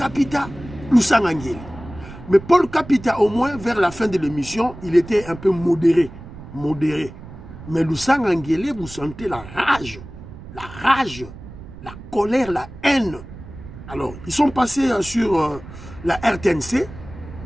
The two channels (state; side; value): noise; right; rumble, 15 dB below the sound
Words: Lusanga Nguele. Mais Paul Kapita, au moins, vers la fin de l'émission, il était un peu modéré. Mais Lusanga Nguele, vous sentez la rage, la colère, la haine. Alors, ils sont passés sur la RTNC,